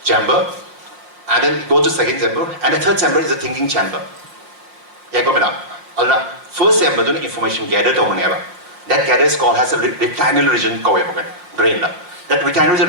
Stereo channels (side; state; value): left; late; 5.4 ms